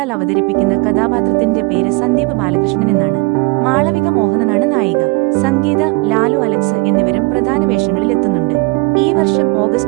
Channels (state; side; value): quieter; left; 27.2 dB